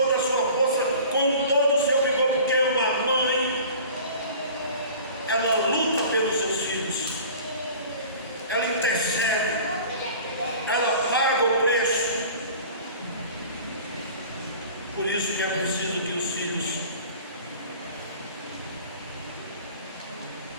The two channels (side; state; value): both; inverted; correlation -0.43